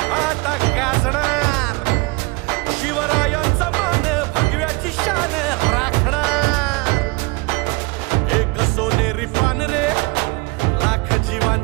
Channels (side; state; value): left; quieter; 26.0 dB